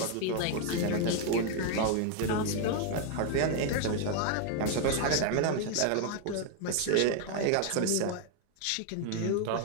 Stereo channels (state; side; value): different; both; correlation 0.00